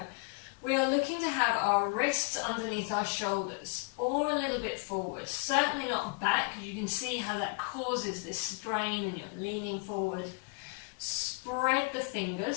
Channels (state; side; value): quieter; right; 32.1 dB